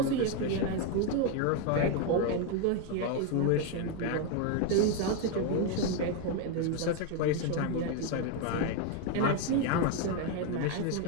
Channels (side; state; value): both; different; correlation 0.01